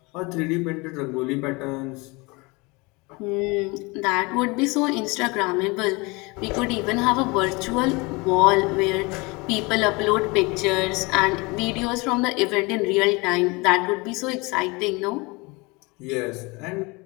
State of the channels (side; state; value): right; quieter; 26.2 dB